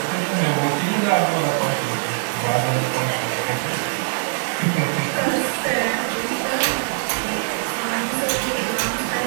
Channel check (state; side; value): silent; left; digital silence